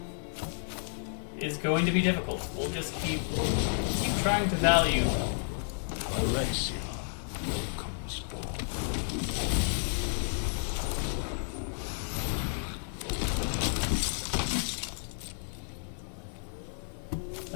is going to be difficult. We'll just keep trying to value. Alexia comes forth.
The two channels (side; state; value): right; silent; digital silence